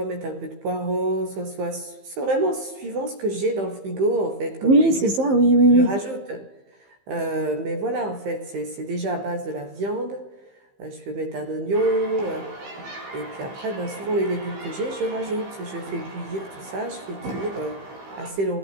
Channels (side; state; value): left; late; 15 ms